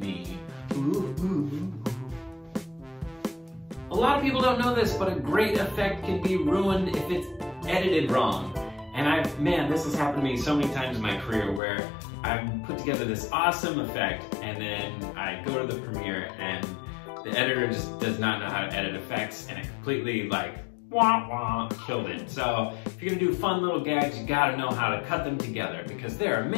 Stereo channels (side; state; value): right; drops out; at 11.6 s